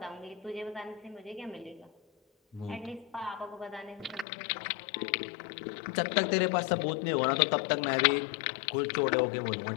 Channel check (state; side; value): drops out; right; at 4.2 s